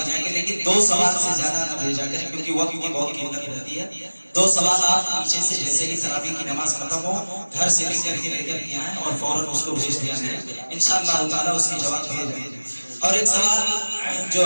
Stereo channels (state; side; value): inverted; both; correlation -1.00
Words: جائیں گے، لیکن 2 سوال سے زیادہ نہ بھیجا کریں کیونکہ وقت کی بہت قیمت رہتی ہے۔ 2 سوال آپ پیچھے سے جیسے ہی تراویح کی نماز ختم ہو گھر سے لکھ کر کے لے کر کے آئیں اور فوراً اس کو بھیج دیا جائے، انشاءاللہ تعالیٰ اس کے جواب دیے جائیں گے۔ اور ایک سوال